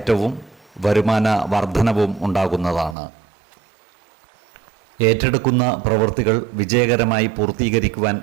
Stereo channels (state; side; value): drops out; left; at 3.0 s